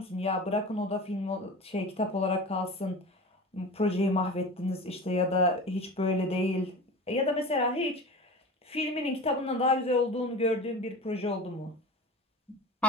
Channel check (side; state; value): both; normal; correlation 0.33